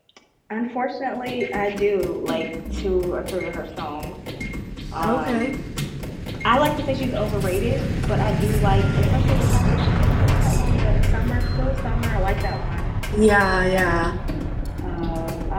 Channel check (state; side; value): identical; both; correlation 1.00